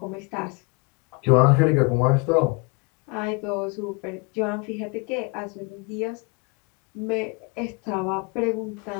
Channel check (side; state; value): right; quieter; 30.7 dB